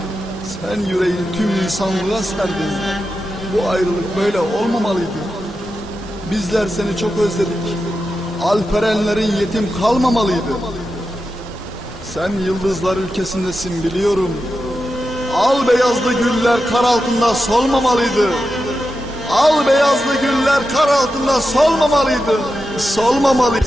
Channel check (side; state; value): both; normal; correlation 0.90